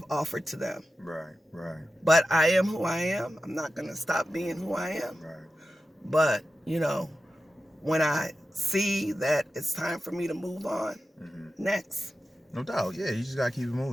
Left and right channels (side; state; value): both; normal; correlation 0.92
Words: offered to them. Right. But I am who I am. I'm not going to stop being who I am. Right. But, when I see that it's time for me to move on, next. No doubt. Yeah, you just got to keep it